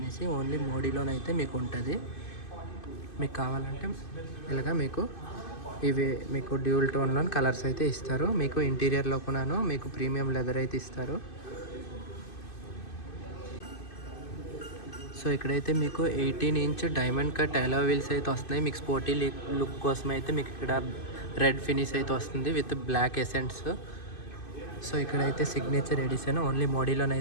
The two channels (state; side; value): late; right; 2.5 ms